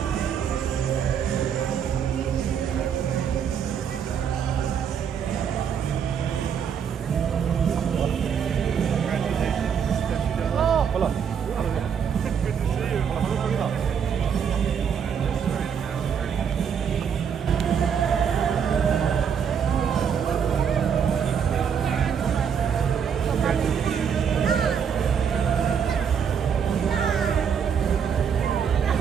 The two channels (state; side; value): quieter; left; 7.5 dB